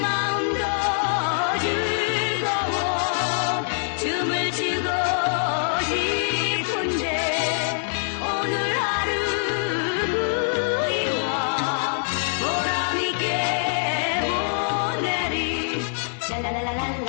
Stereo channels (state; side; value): silent; right; digital silence